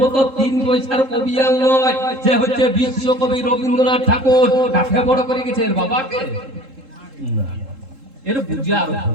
মতো 3 পয়সার কবি আর নয়, যে হচ্ছে বিশ্বকবি রবীন্দ্রনাথ ঠাকুর। কাকে বড় করে গেছে? এর বাবাকে? না, এর বুঝা আর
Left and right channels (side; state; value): left; late; 3.7 ms